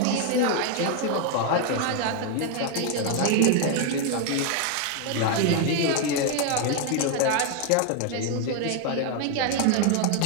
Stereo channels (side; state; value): both; different; correlation 0.01